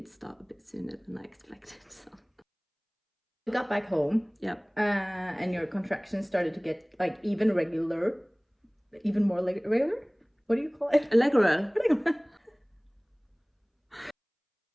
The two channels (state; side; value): identical; both; correlation 1.00